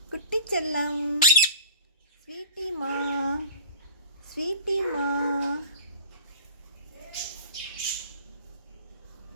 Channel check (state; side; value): inverted; both; correlation -0.42